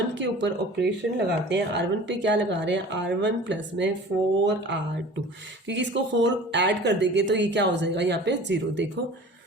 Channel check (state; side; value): normal; both; correlation 0.42